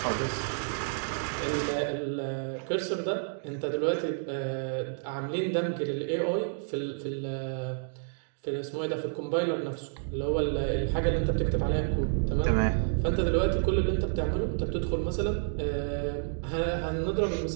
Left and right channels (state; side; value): silent; left; digital silence